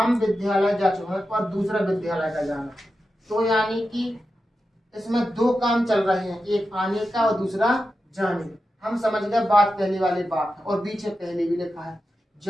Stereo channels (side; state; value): both; normal; correlation 0.91